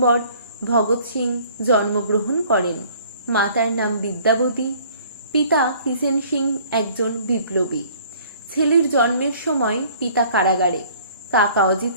ভগৎ সিং জন্মগ্রহণ করেন। মাতার নাম বিদ্যাবতী, পিতা কিষেন সিং একজন বিপ্লবী। ছেলের জন্মের সময় পিতা কারাগারে। কাকা অজিত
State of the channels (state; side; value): inverted; both; correlation -0.54